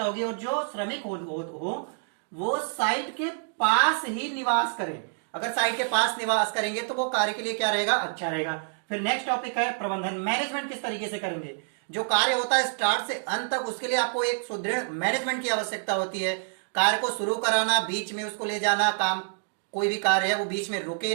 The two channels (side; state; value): left; silent; digital silence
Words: होगी। और जो श्रमिक हो वो साइट के पास ही निवास करें। अगर साइट के पास निवास करेंगे तो वो कार्य के लिए क्या रहेगा, अच्छा रहेगा। फिर नेक्स्ट टॉपिक है प्रबंधन। मैनेजमेंट किस तरीके से करेंगे, जो कार्य होता है स्टार्ट से अंत तक, उसके लिए आपको एक सुदृढ़ मैनेजमेंट की आवश्यकता होती है। कार्य को शुरू कराना, बीच में उसको ले जाना, काम कोई भी कार्य है वो बीच में रुके